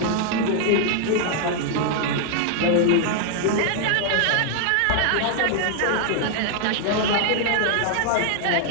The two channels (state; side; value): different; both; correlation 0.00